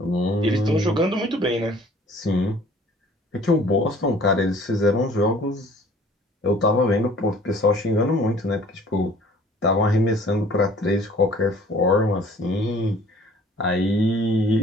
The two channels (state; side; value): normal; both; correlation 0.53